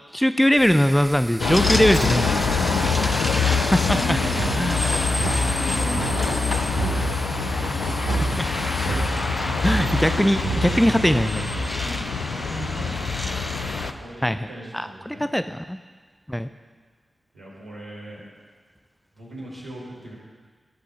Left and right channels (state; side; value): normal; both; correlation 0.90